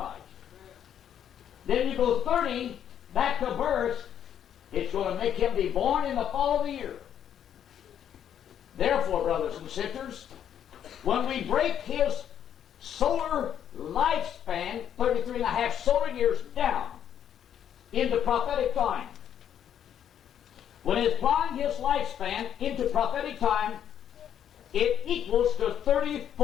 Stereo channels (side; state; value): right; quieter; 9.4 dB